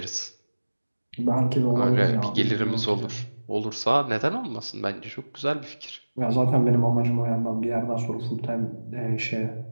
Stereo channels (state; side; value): inverted; both; correlation -1.00